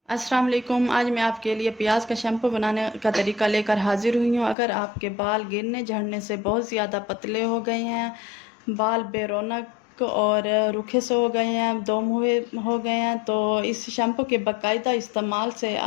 अस्सलाम वालेकुम। आज मैं आपके लिए प्याज का शैम्पू बनाने का तरीका लेकर हाजिर हुई हूँ। अगर आपके बाल गिरने झड़ने से बहुत ज़्यादा पतले हो गए हैं, बाल बेरौनक और रूखे से हो गए हैं, दम हुए हो गए हैं, तो इस शैम्पू के बाकायदा इस्तेमाल से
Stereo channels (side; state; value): right; drops out; at 4.5 s